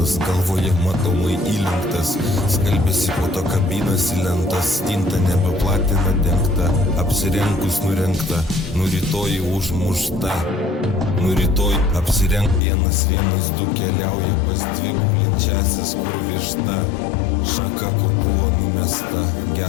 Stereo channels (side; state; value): right; drops out; at 12.6 s